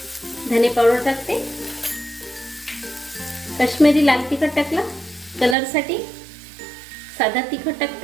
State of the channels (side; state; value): left; drops out; at 5.6 s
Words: धने पावडर टाकते. काश्मीरी लाल तिखट टाकला कलर साठी. साधा तिखट